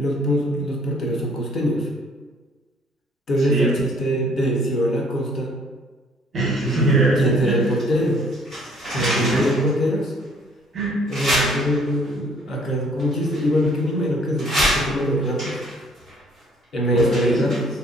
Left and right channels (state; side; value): normal; both; correlation 0.59